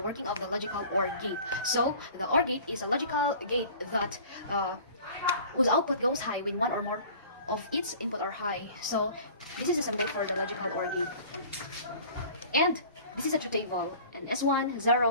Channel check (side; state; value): both; inverted; correlation -0.45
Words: of the logical OR gate. So, the OR gate is a logical gate that whose output goes high when one or more of its input are high. So, this is a symbol for the logical OR gate. And this is a truth table. And S1,